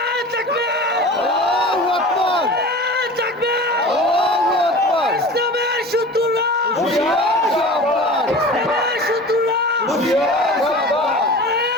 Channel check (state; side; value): normal; both; correlation 0.37